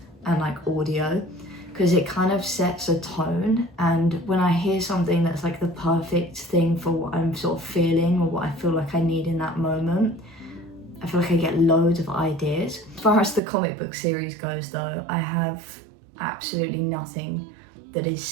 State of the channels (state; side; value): drops out; left; at 13.4 s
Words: and like audio, because it kind of sets a tone, and when I hear something that's like the perfect thing for what I'm sort of feeling or what I feel like I need in that moment, I feel like I get loads of ideas. As far as the comic book series goes though, I have absolutely nothing that is